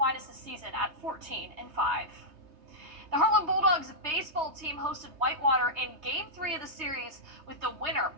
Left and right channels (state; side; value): late; left; 3.2 ms